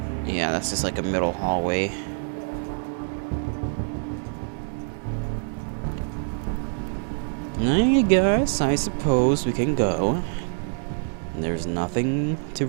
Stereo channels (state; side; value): silent; left; 56 dB below the other